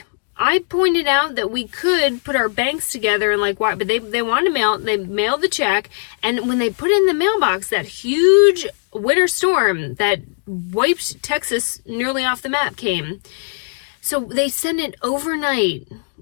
I pointed out that we could put our banks together and like why, but they wanted to they mailed the check, and when they put it in the mailbox, that huge winter storm that wiped Texas nearly off the map came. So they sent it overnight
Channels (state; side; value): silent; right; digital silence